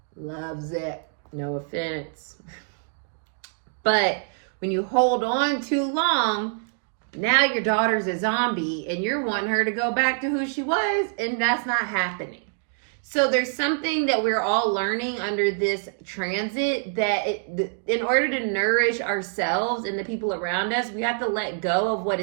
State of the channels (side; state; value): left; silent; digital silence